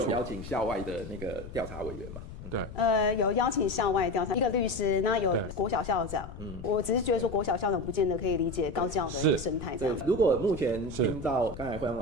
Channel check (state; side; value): noise; left; rumble, 12 dB below the sound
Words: 邀請校外的那個調查委員嘛。對，有邀請校外調查一個律師，那有國小校長。我只是覺得說國小校長不見得可以理解高教的一個生態這樣子。如果目前聽到剛才惠陽